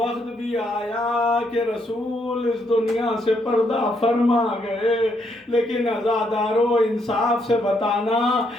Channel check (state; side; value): normal; both; correlation 0.75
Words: بھی آیا کہ رسول اس دنیا سے پردہ فرما گئے، لیکن عزادارو انصاف سے بتانا